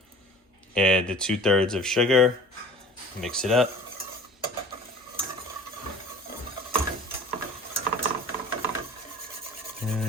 Add the 2/3 of sugar. Mix it up.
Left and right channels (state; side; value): normal; both; correlation 0.44